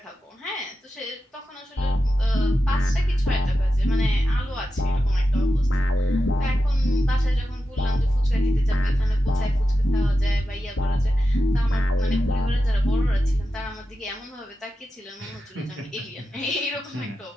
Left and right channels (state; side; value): normal; both; correlation 0.91